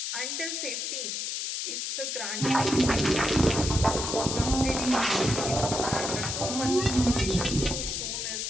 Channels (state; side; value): noise; left; hiss, 3 dB below the sound